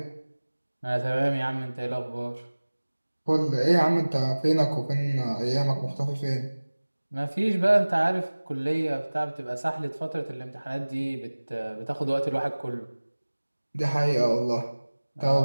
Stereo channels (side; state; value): both; inverted; correlation -1.00